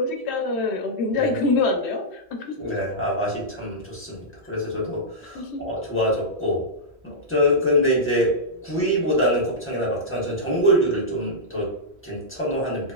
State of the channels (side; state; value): both; normal; correlation -0.11